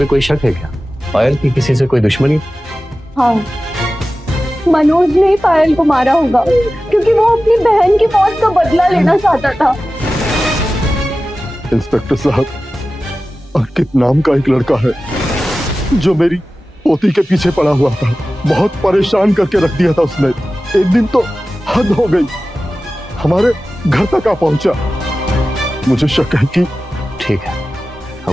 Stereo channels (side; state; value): both; normal; correlation 0.95